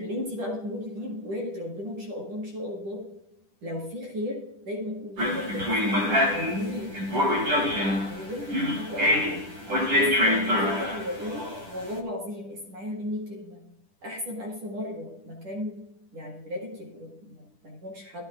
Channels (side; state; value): left; late; 10 ms